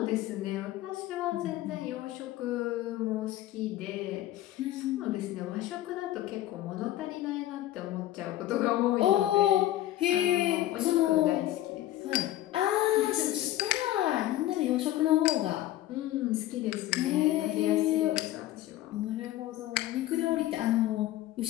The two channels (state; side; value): quieter; right; 14.3 dB